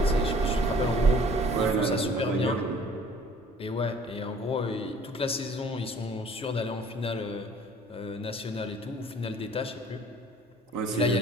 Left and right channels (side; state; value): both; normal; correlation 0.53